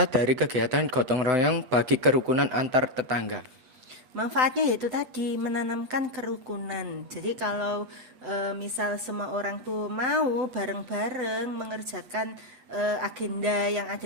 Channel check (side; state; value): left; late; 7.9 ms